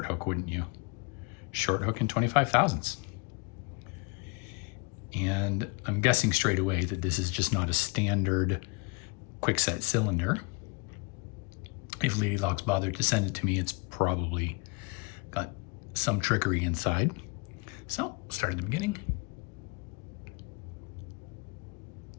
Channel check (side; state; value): right; quieter; 30.8 dB